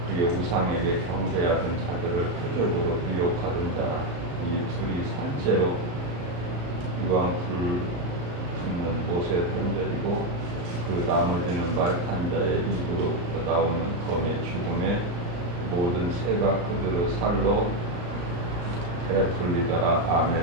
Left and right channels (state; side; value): late; left; 34 ms